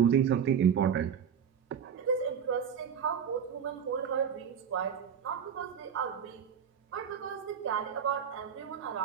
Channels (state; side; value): quieter; left; 7.7 dB